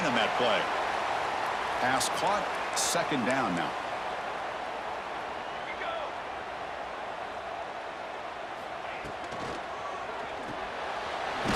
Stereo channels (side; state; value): right; noise; hum, 28 dB below the sound